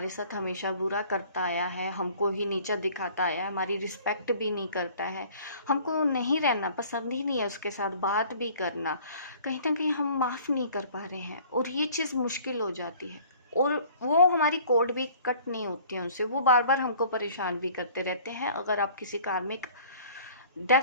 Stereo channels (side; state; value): both; inverted; correlation -0.51